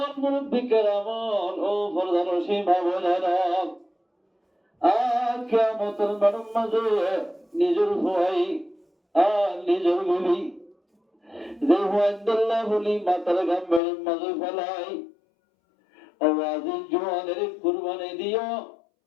মুরব্বী কেরামন ও প্রধান সীমা বোনেরা আর কিয়ামতের মাঠের মাঝে নিজের ভয় আর নিজের বিবি যে হুয়াইদুল্লাহ বলি মাতার গাম্বের মাঝে ফেলাই আওয়াজি জোয়ানের কুরবানি দিও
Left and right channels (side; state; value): right; drops out; at 13.8 s